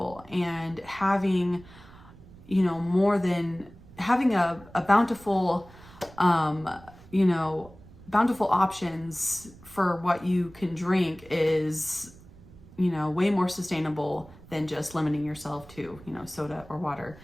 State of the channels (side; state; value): right; noise; rumble, 21 dB below the sound